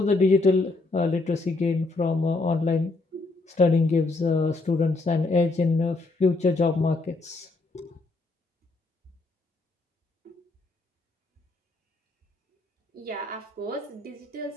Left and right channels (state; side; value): quieter; right; 3.3 dB